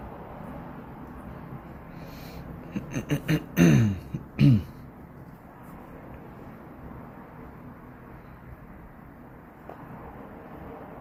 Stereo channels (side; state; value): both; identical; correlation 1.00